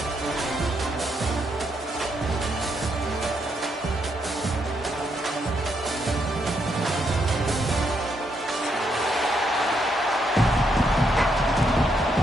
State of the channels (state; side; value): normal; both; correlation 0.77